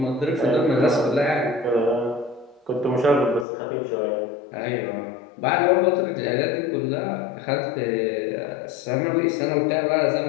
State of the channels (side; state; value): right; drops out; at 3.5 s